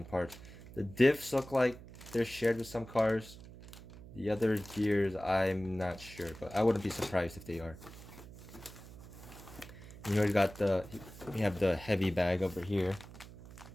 parts. The diffs look like they're shared with some cars. The other gears, I'm not sure, but I wouldn't be surprised if they are. You already got we have the heavy bag over here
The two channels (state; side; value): noise; right; hum, 16 dB below the sound